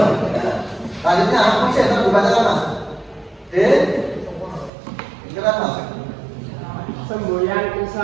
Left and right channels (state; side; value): drops out; left; at 4.7 s